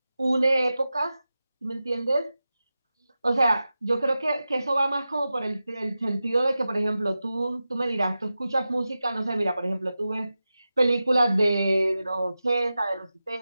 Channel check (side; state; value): both; inverted; correlation -0.93